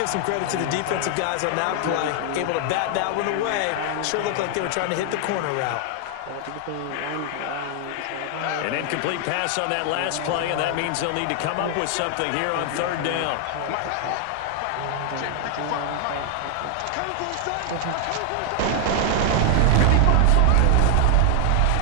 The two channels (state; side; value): different; both; correlation 0.00